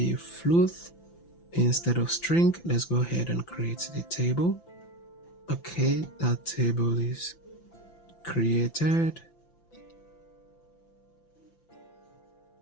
float instead of string. Let's go ahead and create the table. Okay, that table is created.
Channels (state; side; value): late; right; 5.9 ms